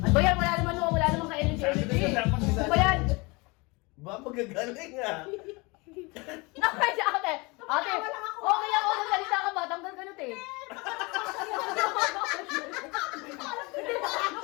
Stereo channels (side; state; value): right; quieter; 26.5 dB